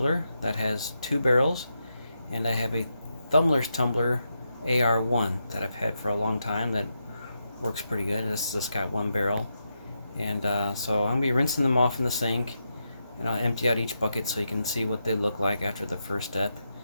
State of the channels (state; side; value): inverted; both; correlation -0.84